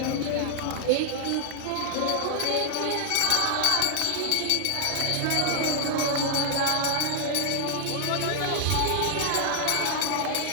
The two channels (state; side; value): different; both; correlation 0.00